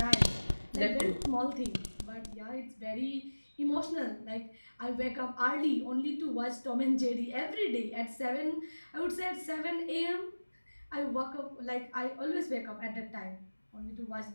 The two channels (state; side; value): inverted; both; correlation -1.00